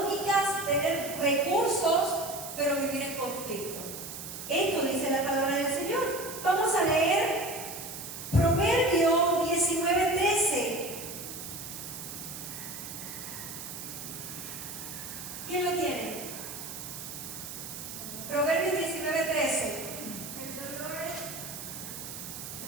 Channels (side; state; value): right; noise; hiss, 9 dB below the sound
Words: tener recursos, pero vivir en conflicto. Esto dice la palabra del Señor. Vamos a leer Proverbio 19:13. ¿Quién lo tiene? Proverbios 19:13. El dolor